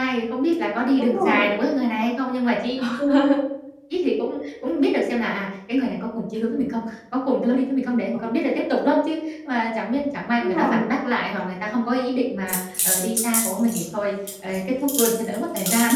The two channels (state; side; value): identical; both; correlation 1.00